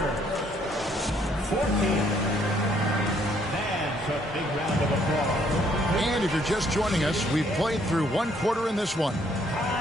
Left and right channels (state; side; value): normal; both; correlation 0.67